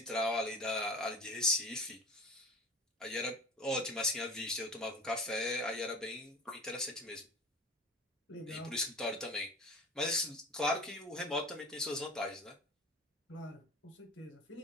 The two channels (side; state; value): both; normal; correlation 0.37